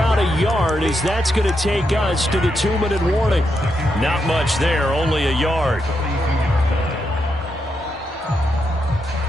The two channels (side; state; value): both; normal; correlation 0.82